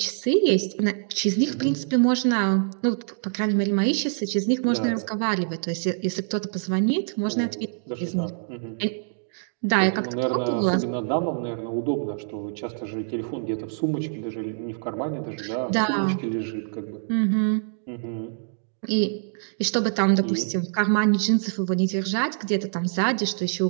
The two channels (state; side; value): silent; left; digital silence